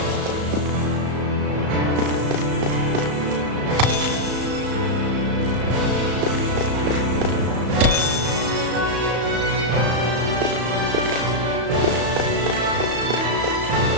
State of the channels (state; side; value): late; left; 34 ms